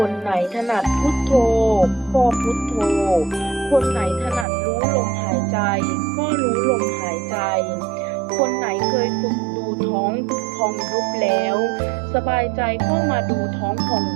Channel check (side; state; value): left; drops out; at 4.5 s